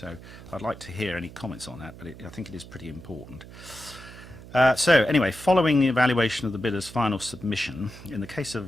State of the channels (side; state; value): right; noise; hum, 17 dB below the sound